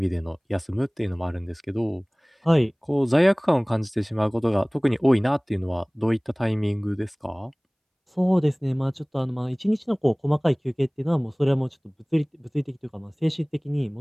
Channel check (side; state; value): both; identical; correlation 1.00